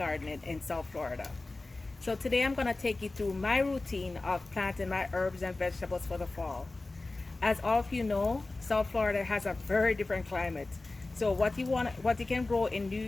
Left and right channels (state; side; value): quieter; right; 3.2 dB